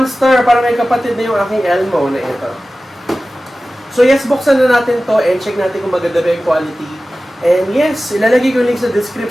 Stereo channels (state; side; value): normal; both; correlation 0.96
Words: Para may kapatid na yung aking Elmo na ito. So yes, buksan na natin to and check natin kung maganda ba yung quality. And yes, ilalagay ko yung link sa